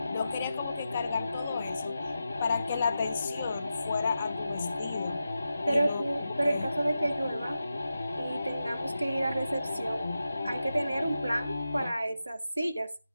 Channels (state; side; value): inverted; both; correlation -0.91